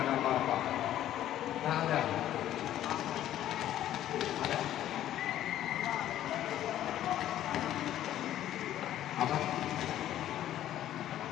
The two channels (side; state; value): right; quieter; 12.4 dB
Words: apa-apa. Tak ada. Ada? Apa?